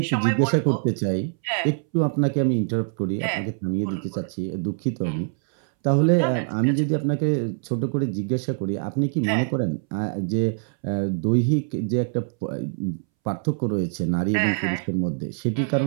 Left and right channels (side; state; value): left; silent; 62 dB below the other